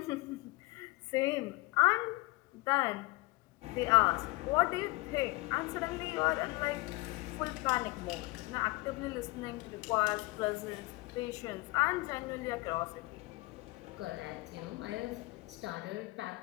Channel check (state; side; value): quieter; right; 22.7 dB